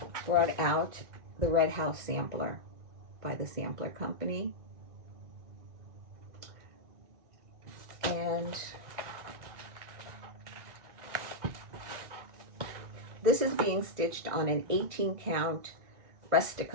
brought out the Red House Sampler by the Sampler Company. And this is being stitched on an 18 count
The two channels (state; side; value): late; left; 2.1 ms